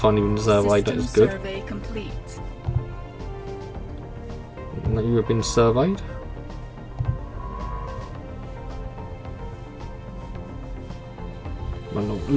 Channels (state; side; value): identical; both; correlation 1.00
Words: been surveyed, that System is good. survey complete. And that you have been surveyed. Well, a